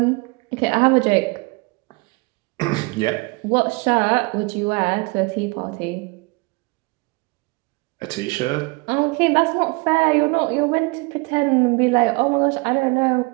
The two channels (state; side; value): quieter; left; 27.9 dB